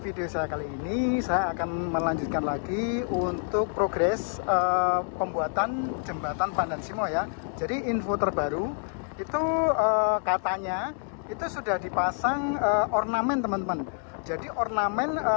saya kali ini saya akan melanjutkan lagi untuk progres pembuatan jembatan Pandan Simo ya. Jadi info terbaru itu katanya itu sudah dipasang ornamen teman-teman. Jadi ornamen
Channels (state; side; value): silent; right; 60 dB below the other